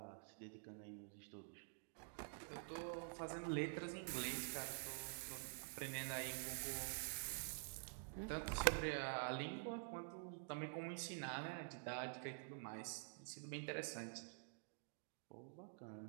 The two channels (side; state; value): left; silent; digital silence